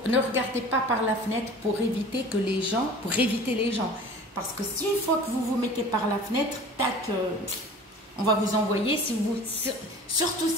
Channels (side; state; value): both; normal; correlation 0.42